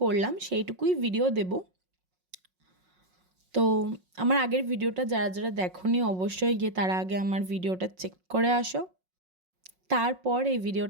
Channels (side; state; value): left; late; 5.5 ms